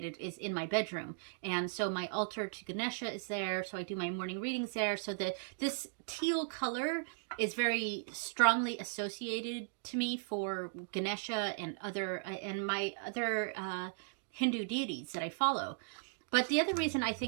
is in my bedroom, and so my altar to Ganesha is there. So I do my morning readings there. So this teal color is very strongly associated to me for Ganesha and my other Hindu deities that I follow. But the other reason I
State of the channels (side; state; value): left; silent; digital silence